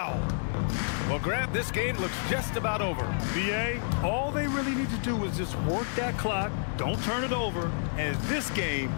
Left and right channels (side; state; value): right; silent; digital silence